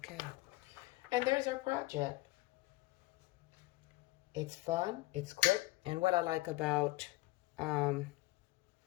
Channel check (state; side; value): quieter; right; 21.0 dB